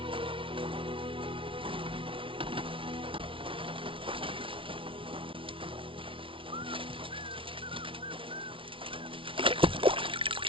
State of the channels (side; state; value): left; late; 0.25 ms